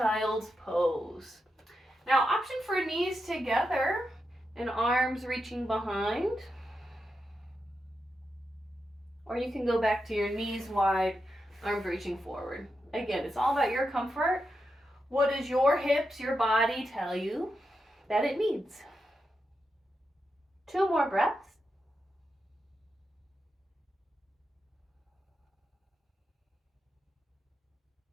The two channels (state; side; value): normal; both; correlation 0.87